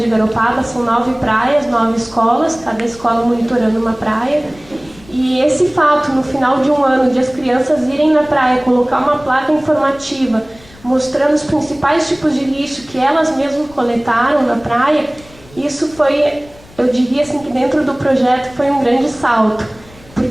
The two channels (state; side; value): noise; left; rumble, 24 dB below the sound